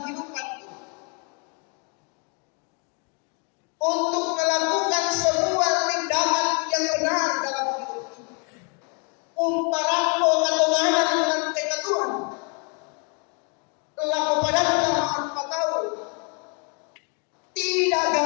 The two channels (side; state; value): right; quieter; 36.4 dB